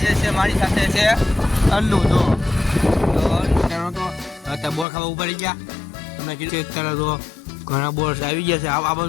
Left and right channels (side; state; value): right; drops out; at 4.9 s